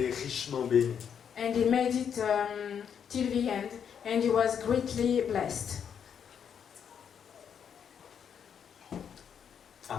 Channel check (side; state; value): right; quieter; 7.8 dB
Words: richement béni. and he made it till the end and he was greatly blessed.